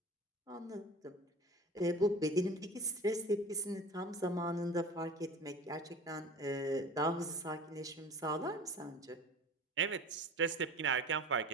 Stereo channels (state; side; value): normal; both; correlation 0.38